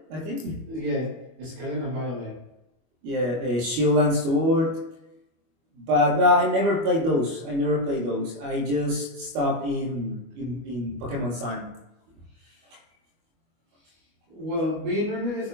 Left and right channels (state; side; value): late; left; 25 ms